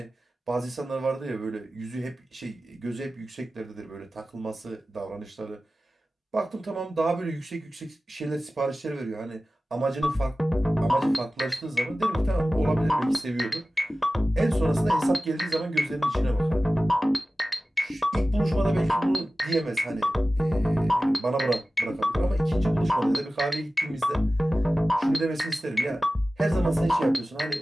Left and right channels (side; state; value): both; normal; correlation 0.96